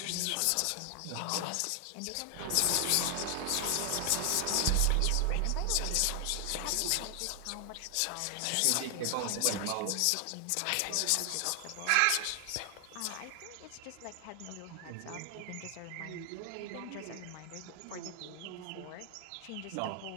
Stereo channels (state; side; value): different; both; correlation 0.00